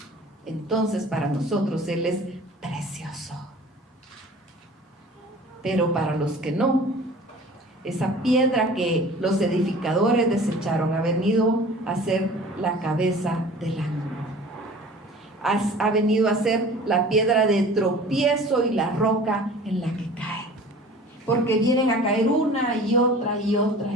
entonces para nosotros Él es precioso. Pero para los que no, esa piedra que los edificadores desecharon ha venido a ser la cabeza del ángulo. Ha venido a ser la piedra de tropiezo y la roca en la que cae. Porque vienen a caer una y otra y otra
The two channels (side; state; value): both; normal; correlation 0.44